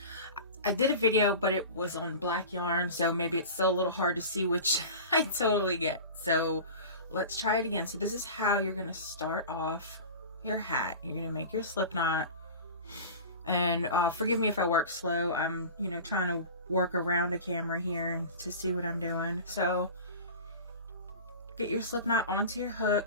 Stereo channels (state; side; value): inverted; both; correlation -0.35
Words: I did a video, but it was on black yarn, so maybe it's still a little hard to see, which I totally get. So let's try it again. So this is how you're going to start off your hat. You're going to make your slip knot, and forgive me if I work slow. I'm, trying to work around a camera here to see what I'm doing. So get your slip knot onto your